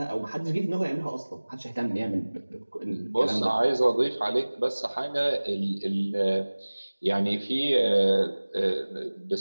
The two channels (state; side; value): inverted; both; correlation -1.00